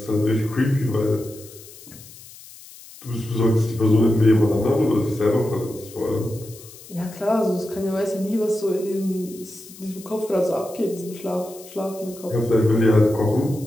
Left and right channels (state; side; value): noise; left; hiss, 19 dB below the sound